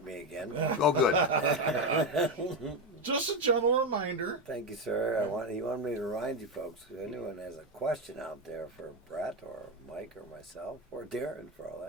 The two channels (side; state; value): both; normal; correlation 0.11